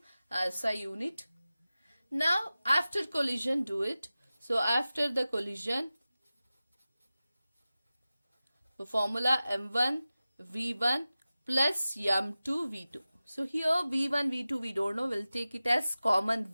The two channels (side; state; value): both; inverted; correlation -0.96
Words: as a unit. Now after collision, do it. So after the collision, the formula m1 v1 plus m2 v2. So here v1 v2 we don't know, we'll take it as common